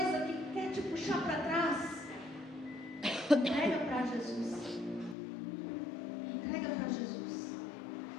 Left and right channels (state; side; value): drops out; right; at 5.2 s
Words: que quer te puxar para trás, entrega para Jesus. Entrega para Jesus.